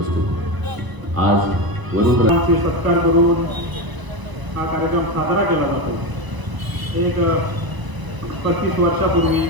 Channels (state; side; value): late; left; 1.0 ms